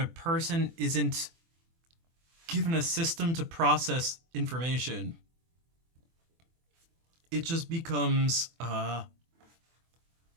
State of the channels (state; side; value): late; left; 24 ms